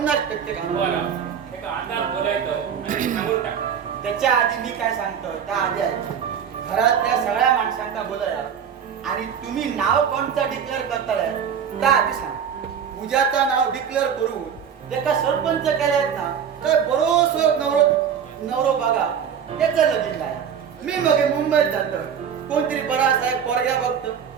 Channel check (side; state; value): left; quieter; 7.8 dB